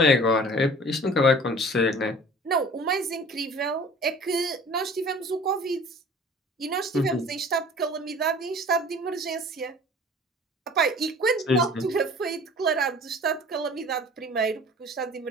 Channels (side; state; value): both; normal; correlation 0.46